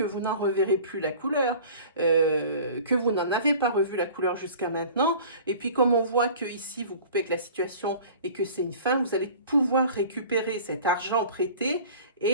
vous n'en reverrez plus la couleur. Que vous n'en avez pas revu la couleur jusqu'à maintenant. Et puis comme on voit que ici vous coupez avec la situation et que c'est une fin, vous allez pouvoir récupérer cet argent prêté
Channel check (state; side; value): inverted; both; correlation -0.43